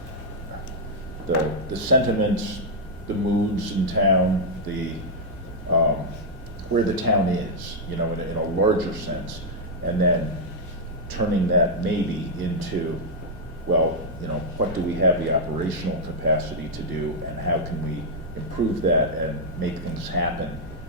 sentiments, the moods in town, where the town is, in a larger sense, and then turning that maybe into, well, what do we have the operational capacity to do, and how can we improve that and make things happen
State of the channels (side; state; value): both; normal; correlation -0.04